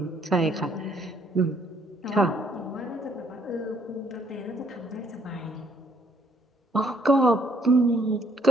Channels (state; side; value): normal; both; correlation 0.67